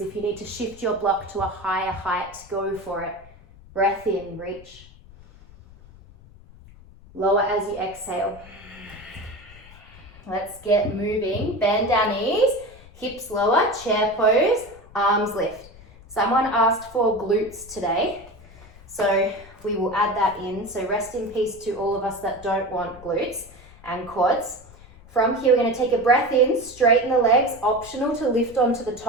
If you need to shift your block to a higher height, go for it. Breath in, reach. Lower as you exhale. Let's get moving. Bend our knees, hips lower, chair pose, arms lift. Someone asked for glutes today, so we will add that in. So rest in peace to all of us that don't want glutes and quads. From here, we're going to take a breath in, straighten the legs, optional to lift onto the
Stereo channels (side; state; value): left; noise; rumble, 22 dB below the sound